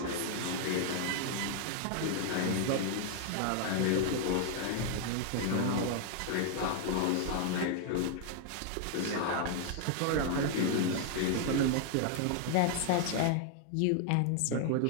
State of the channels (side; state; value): both; different; correlation 0.00